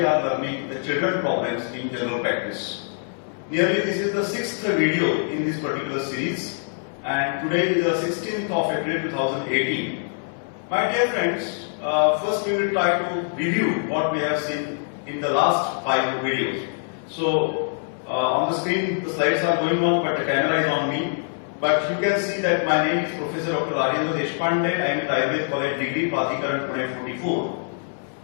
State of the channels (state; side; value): silent; right; 63 dB below the other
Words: are learning the children problems in general practice. Nearly this is the 6th video in this particular series and today is the 16th of April 2018. My dear friends, first we will try to review what we have seen in the last 5 videos. So on the screen the slides are going on but the camera is on me. But you can see that my name is Professor Dr. Rajendra Deshpande. I am at Ayurveda College Degree, Pradhikaran, Pune 44.